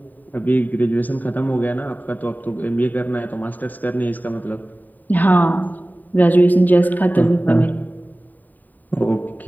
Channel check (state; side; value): late; right; 0.086 ms